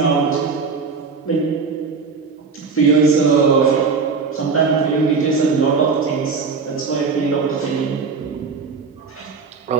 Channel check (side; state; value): left; quieter; 5.0 dB